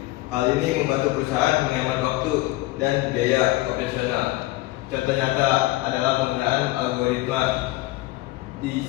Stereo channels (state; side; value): quieter; right; 18.6 dB